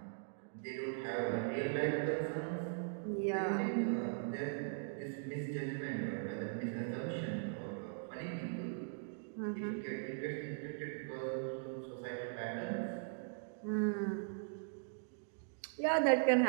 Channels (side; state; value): left; silent; digital silence